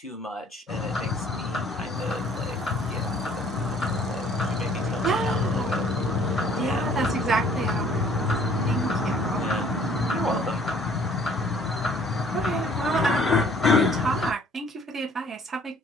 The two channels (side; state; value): both; normal; correlation 0.57